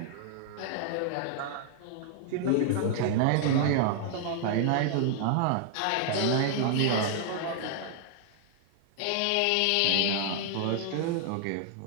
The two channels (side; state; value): both; different; correlation 0.00